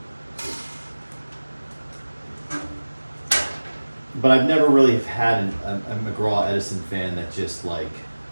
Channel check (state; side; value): inverted; both; correlation -1.00